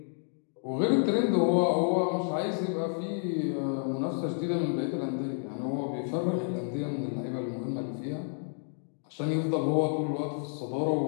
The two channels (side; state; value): right; silent; digital silence